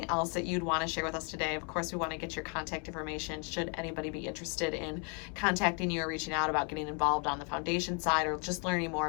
else that you'd want to share with us today? Of course, we want to get your contact information should anybody be interested in contacting you or reaching out about getting involved on the foundation side or just learning more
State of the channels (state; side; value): quieter; right; 37.0 dB